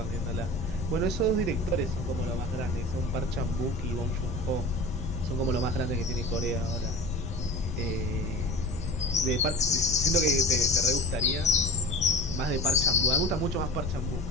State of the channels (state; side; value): noise; left; rumble, 7 dB below the sound